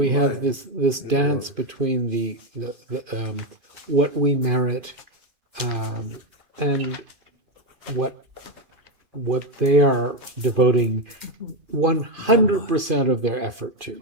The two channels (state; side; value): late; left; 2.5 ms